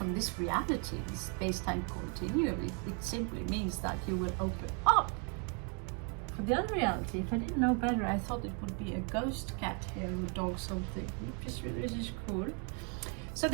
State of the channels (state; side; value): quieter; left; 38.1 dB